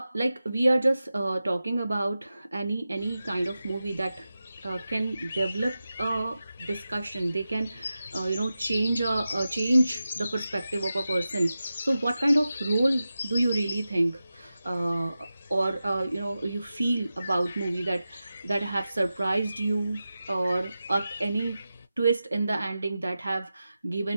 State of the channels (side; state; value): both; inverted; correlation -0.93